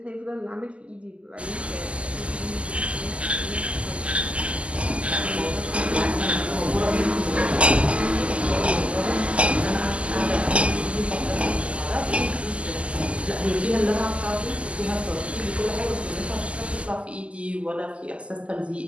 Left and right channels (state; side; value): late; left; 0.058 ms